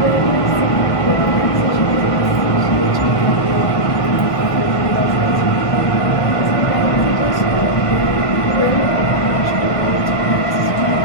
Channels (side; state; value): right; late; 1.5 ms